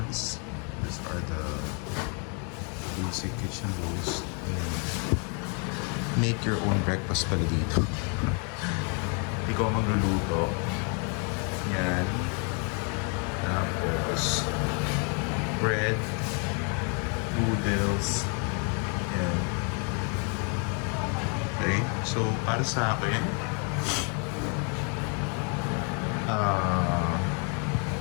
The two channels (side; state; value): right; quieter; 37.9 dB